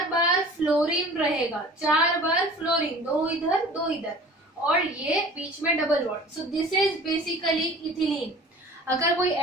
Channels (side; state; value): both; normal; correlation 0.44